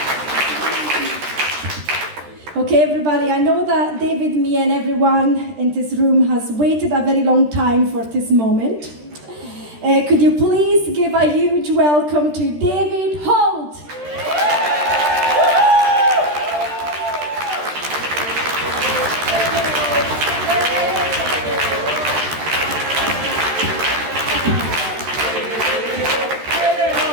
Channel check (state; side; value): late; left; 13 ms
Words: Okay, everybody, I know that David, me, and everyone in this room has waited a very long time for this moment. Could you please give a huge welcome to David Holt?